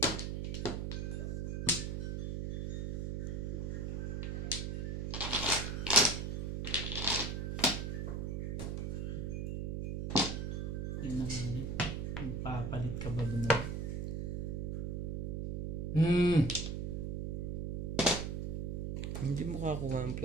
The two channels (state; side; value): noise; right; hum, 2 dB below the sound